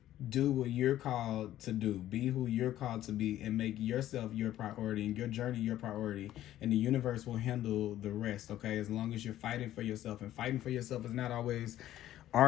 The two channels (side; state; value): right; quieter; 13.1 dB